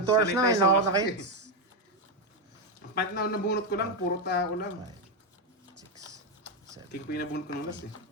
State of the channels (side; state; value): both; normal; correlation 0.06